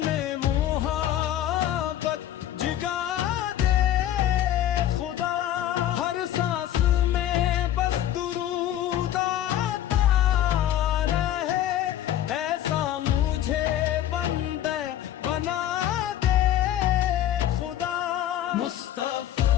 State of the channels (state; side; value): quieter; right; 12.0 dB